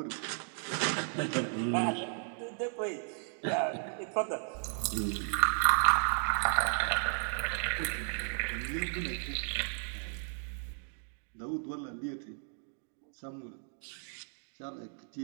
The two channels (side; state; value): left; silent; 55 dB below the other